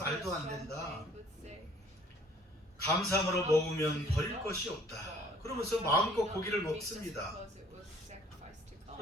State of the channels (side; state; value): both; normal; correlation 0.56